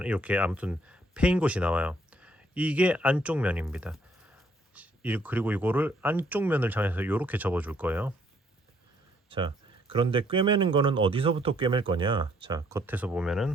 이렇게 아무튼 패인 곳이 나와요. 이게 안쪽 면입니다. 그리고 이거를 안쪽 면을 향해서 이렇게 접어줄 거예요. 자, 그런데 꿰매는 거는 어디서부터 꿰맬 거냐? 자, 겉에서 보면은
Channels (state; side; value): normal; both; correlation 0.67